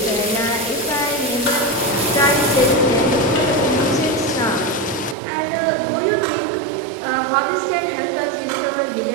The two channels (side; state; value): left; drops out; at 5.2 s